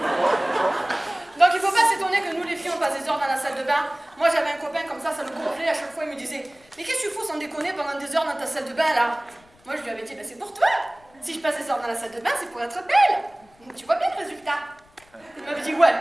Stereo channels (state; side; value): noise; left; rumble, 30 dB below the sound